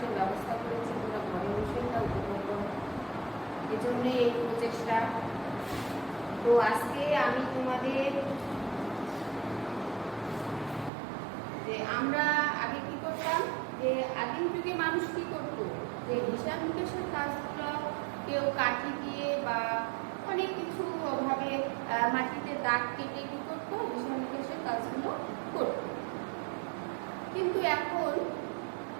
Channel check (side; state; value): left; drops out; at 10.9 s